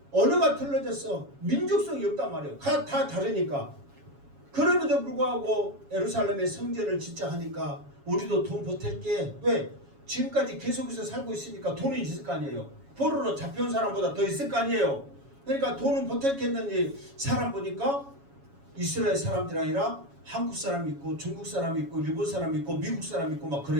언어가 틀려졌어. 민족성이 없단 말이에요. 다 다르니까. 그럼에도 불구하고 예루살렘에 성전을 짓자 하니까 우리도 돈 보탤게. 왜? 지금까지 계속해서 살고 있으니까 돈이 있을 거 아니에요. 포로로 잡혀온 사람보다 더 있을 거 아니에요. 그러니까 돈은 보탤겠는지 사람 보니까 이스라엘 사람들이 아니라 한국 사람이 있고 중국 사람이 있고 일본 사람이 있고 미국 사람이 있고 막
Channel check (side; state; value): left; late; 7.2 ms